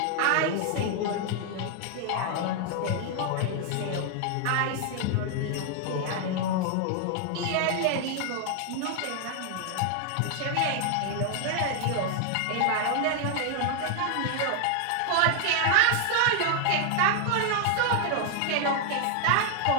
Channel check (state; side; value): different; both; correlation 0.00